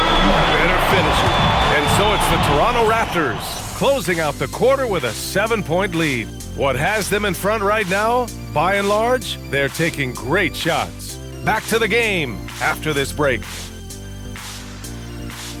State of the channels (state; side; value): identical; both; correlation 1.00